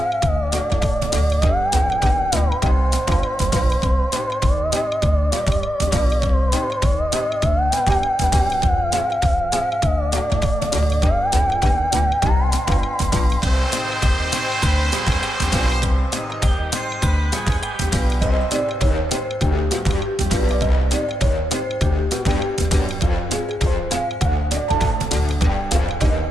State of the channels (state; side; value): normal; both; correlation 0.87